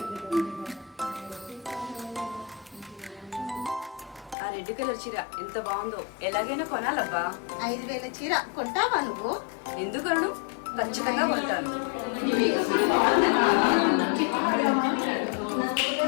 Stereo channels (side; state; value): right; drops out; at 4.4 s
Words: ఆ రెడ్ కలర్ చీర ఎంత బాగుందో, ఎలాగైనా కొనాలబ్బా. 5,000 చీర కొంటావా నువ్వు? ఎందుకను? ఖచ్చితంగా కొంటాను.